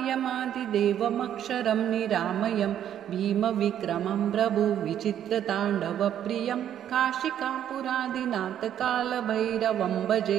निरामयं भीमविक्रमं प्रभुविचित्रताण्डवप्रियं काशिकापुरादिनाथकालभैरवं भजे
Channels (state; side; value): quieter; left; 10.3 dB